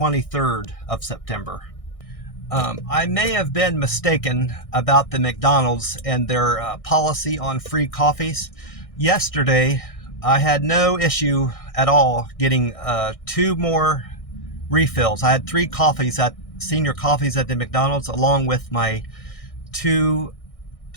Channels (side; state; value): right; late; 1.6 ms